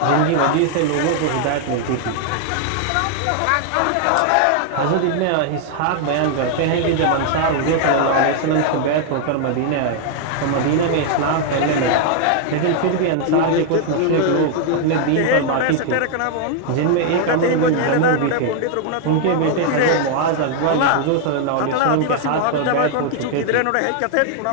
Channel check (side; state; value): both; different; correlation 0.00